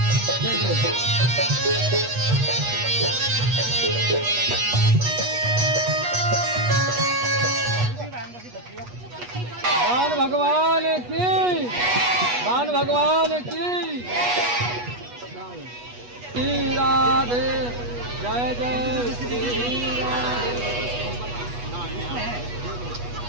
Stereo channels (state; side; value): late; left; 8.3 ms